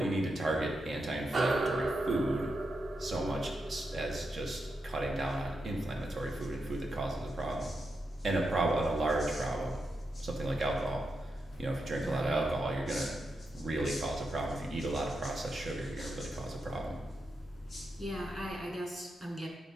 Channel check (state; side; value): normal; both; correlation 0.86